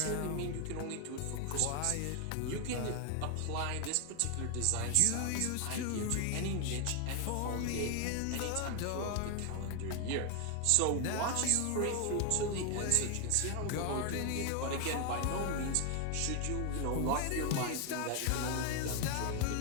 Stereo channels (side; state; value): both; different; correlation 0.01